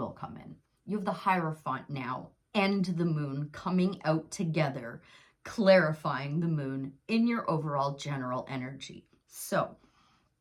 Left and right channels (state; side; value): identical; both; correlation 1.00